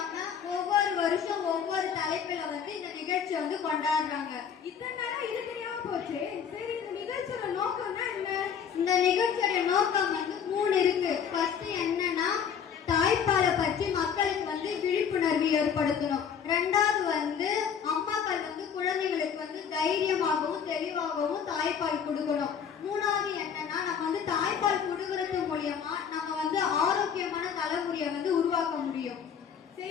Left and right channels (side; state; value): right; quieter; 7.5 dB